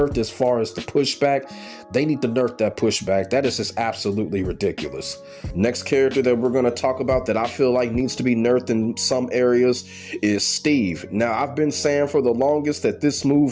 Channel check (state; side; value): identical; both; correlation 1.00